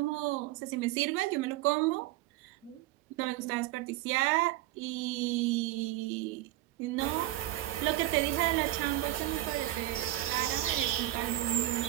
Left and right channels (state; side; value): quieter; left; 16.1 dB